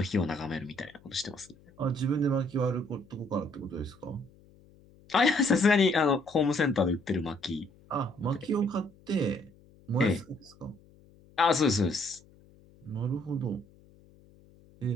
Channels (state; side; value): noise; left; hum, 27 dB below the sound